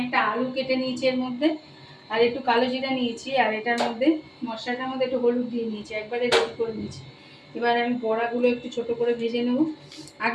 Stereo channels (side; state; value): both; identical; correlation 1.00